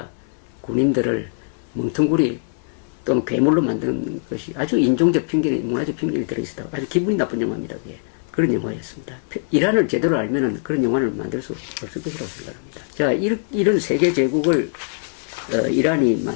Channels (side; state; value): right; silent; 63 dB below the other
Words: 군인들을 멍텅구리 또는 괴물로 만든 것이 아주 인종적 편견이, 문화적 편견이 들어있었다고, 아주 기분이 나쁜 영화입니다. 그게. 그런 영화였습니다. 이란을 제대로 알면은 그런 영화를 만들 수 없을 것이라고 생각합니다. 자, 이런 세계 제국을 이란이